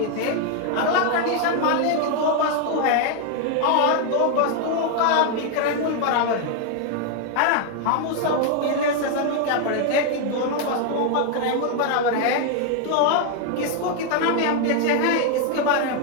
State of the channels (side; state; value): both; different; correlation 0.00